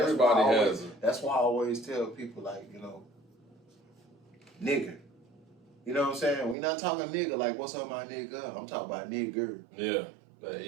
has it. That's why I always tell people like, nigger. You know what I'm saying? We not talking nigga like what's on my nigga. I'm talking about nigger. Yeah.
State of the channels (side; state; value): left; drops out; at 6.6 s